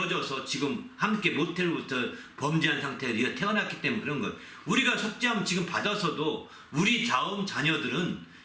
지금 함께 모태로부터 범죄한 상태에서 우리가 태어났기 때문에 그런 것. 우리가 속죄함 지금 받아서도 우리 다음 자녀들은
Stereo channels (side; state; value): both; identical; correlation 1.00